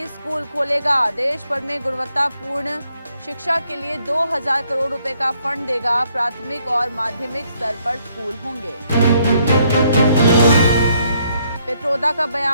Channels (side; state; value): both; inverted; correlation -0.70